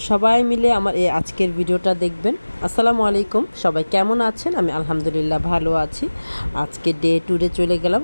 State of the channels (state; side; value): inverted; both; correlation -1.00